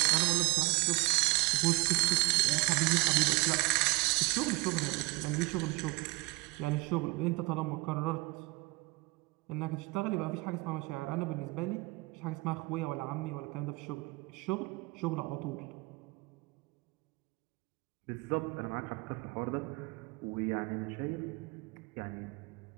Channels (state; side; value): quieter; left; 23.8 dB